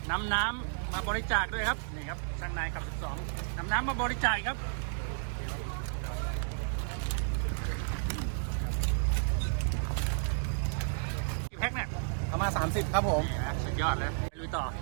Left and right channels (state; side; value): silent; left; digital silence